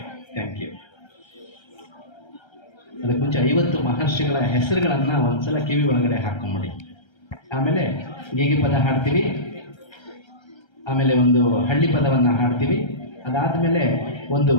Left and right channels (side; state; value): right; late; 1.3 ms